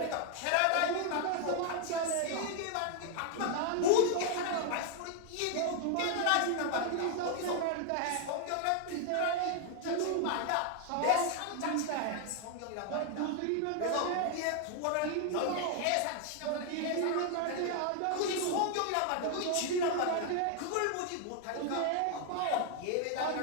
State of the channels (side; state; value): both; different; correlation 0.01